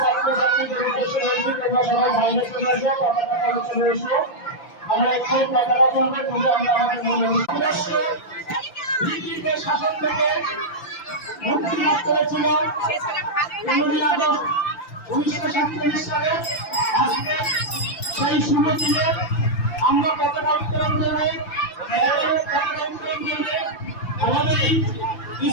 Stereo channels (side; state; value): right; late; 5.9 ms